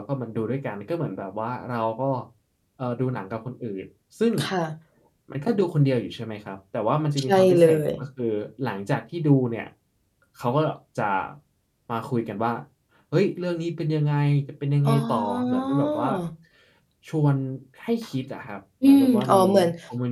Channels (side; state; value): both; identical; correlation 1.00